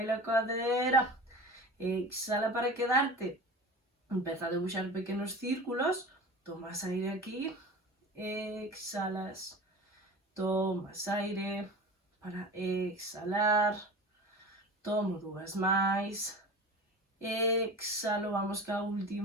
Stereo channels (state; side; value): normal; both; correlation 0.34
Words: a cadera. Exhala para quedarte. Empeza a debuxar pequenos círculos. Tomas aire aquí. Exhalas. Tomas aire para exhalar. Tomo dúas máis. Exhalo, vamos ca